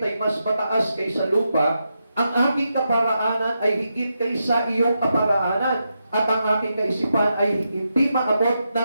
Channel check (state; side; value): inverted; both; correlation -0.86